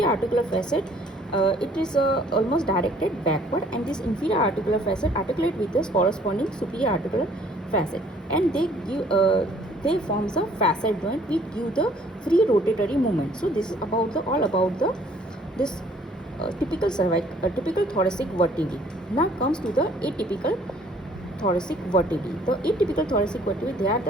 articular facet, it is almost directed backward, and this inferior articular facet articulate with the corresponding superior articular facet, and they give they forms a facet joint which give the free rotatory movement. So this is about the all about the this typical typical thoracic vertebrae. Now comes to the atypical thoracic vertebrae. The atypical thoracic vertebrae, they are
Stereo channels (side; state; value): both; normal; correlation 0.58